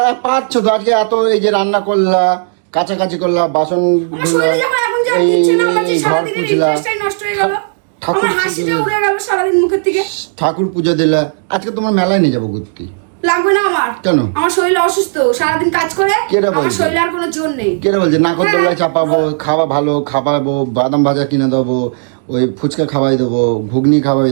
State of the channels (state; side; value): silent; left; digital silence